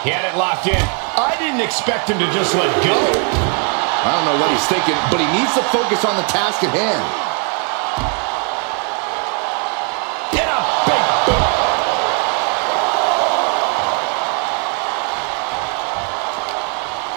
He had it locked in. I didn't expect him to just let go. I don't know what he's thinking, but he needs to focus on the task at hand. Get a big boot.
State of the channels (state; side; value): quieter; left; 39.7 dB